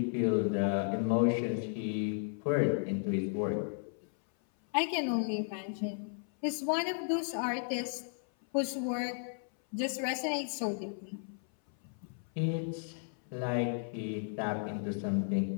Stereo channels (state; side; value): silent; right; 55 dB below the other